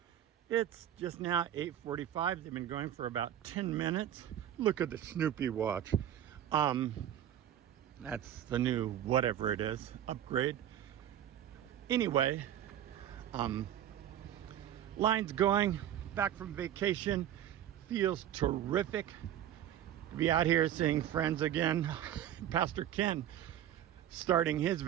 It's just now 8:45. They've been going for about 10 minutes. Look at the Snoopy watch. That's the new whatever it is, upgrade. Anyway, line's going, back from vacation. Feels terrific to be out here seeing friends again. Pastor Ken starting his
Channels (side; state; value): left; quieter; 11.0 dB